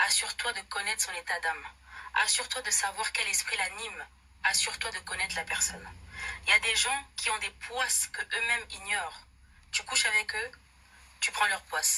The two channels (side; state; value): both; identical; correlation 1.00